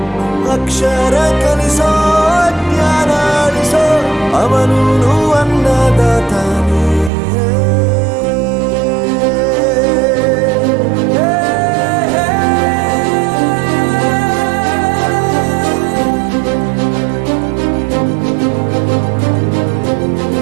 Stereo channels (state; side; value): drops out; left; at 7.1 s